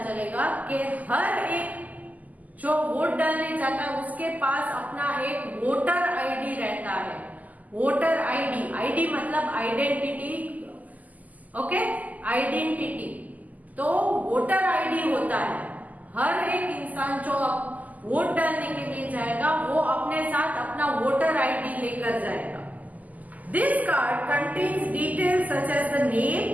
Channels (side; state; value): left; late; 0.079 ms